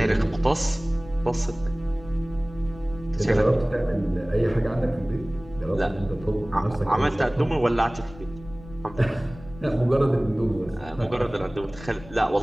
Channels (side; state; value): left; noise; rumble, 18 dB below the sound